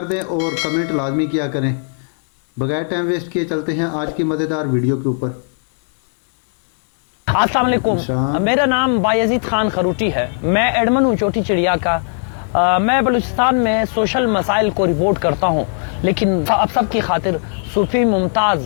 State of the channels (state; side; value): silent; right; 67 dB below the other